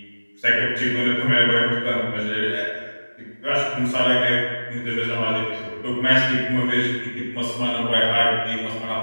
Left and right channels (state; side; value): inverted; both; correlation -1.00